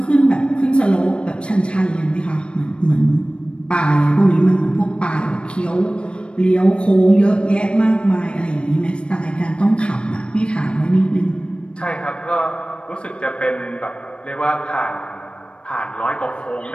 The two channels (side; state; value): right; late; 0.056 ms